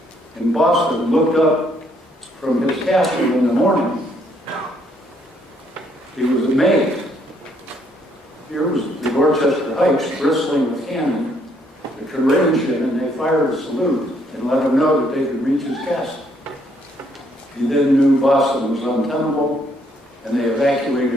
in Boston, looked up from his castle in the morning, he was amazed. Here was the Dorchester Heights bristling with cannon that could range him, and they fired a salute and let him know that they could reach his castle. He then knew Boston was untenable, and they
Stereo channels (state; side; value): normal; both; correlation 0.69